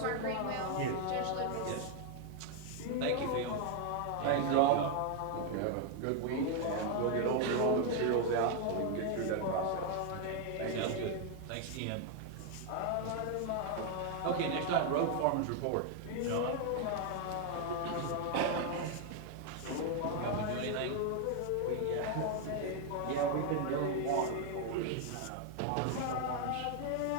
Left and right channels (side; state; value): both; different; correlation 0.00